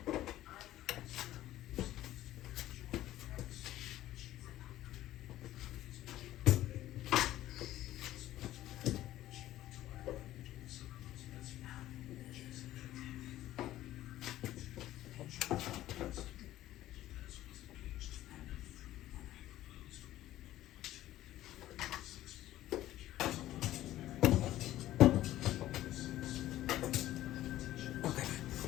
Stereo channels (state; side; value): quieter; right; 14.3 dB